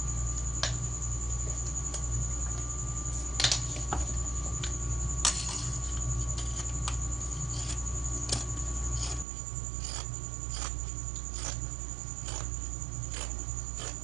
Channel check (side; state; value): left; drops out; at 9.2 s